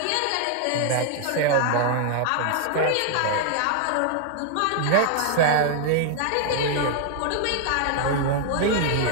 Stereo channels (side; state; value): both; different; correlation 0.00